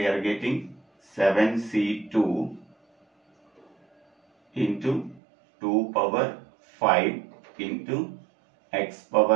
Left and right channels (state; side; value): drops out; left; at 5.2 s